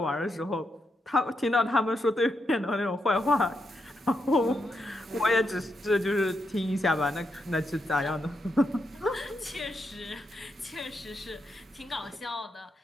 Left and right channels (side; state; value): both; normal; correlation 0.82